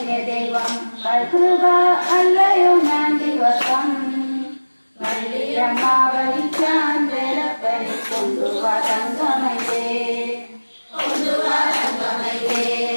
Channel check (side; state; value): both; inverted; correlation -1.00